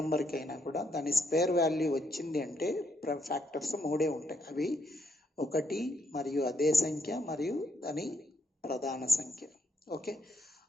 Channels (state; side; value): normal; both; correlation 0.76